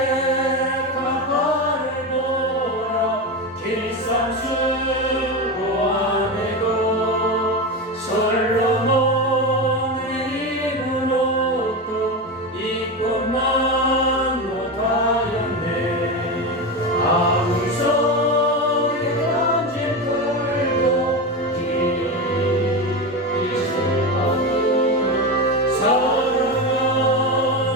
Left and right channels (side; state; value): both; normal; correlation 0.19